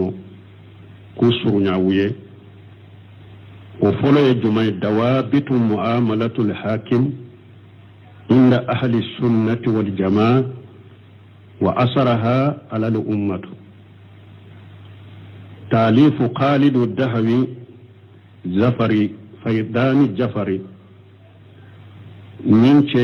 kusurunya wuye o folo ye jumay dawabitu muamalatul hakim inda ahli sunnati wal jamaa wa asaraha ala al ummatu تاليف خالد الدهوي زفري فيدان جفري من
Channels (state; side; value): identical; both; correlation 1.00